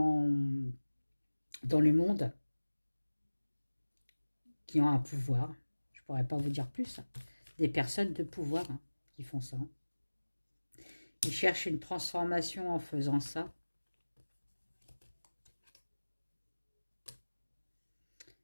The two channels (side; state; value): both; inverted; correlation -1.00